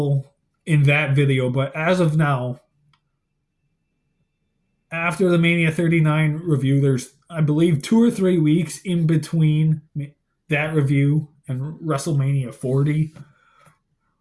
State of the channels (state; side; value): identical; both; correlation 1.00